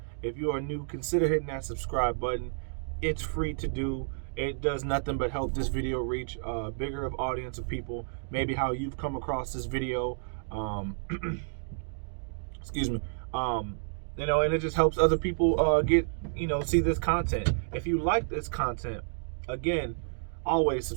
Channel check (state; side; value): silent; left; digital silence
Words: If you are new, consider hitting that subscribe button. It's free to do. It does nothing but help this video reach a bigger of audience of people. Maybe how you've come across this video. Excuse me. And it just helps other people get, see this content. If you like this content, again, always